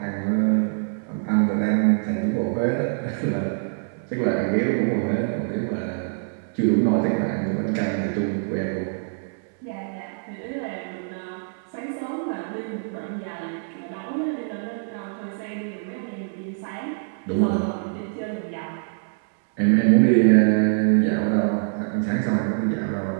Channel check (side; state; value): left; silent; 62 dB below the other